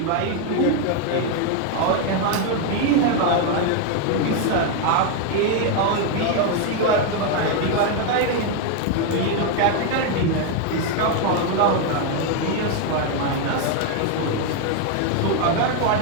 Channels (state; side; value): different; both; correlation 0.01